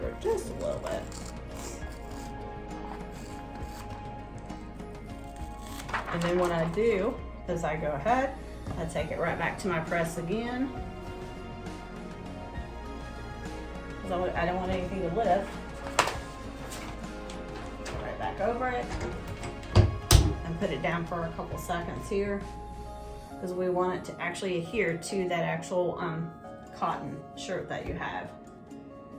it just a little bit. And then what I do is I go ahead, I take it right back to my press again. Because I don't want anything to lift. Go right back over it and put it down for a couple seconds here. Because we want it to actually adhere to that actual cotton shirt that you have.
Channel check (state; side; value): identical; both; correlation 1.00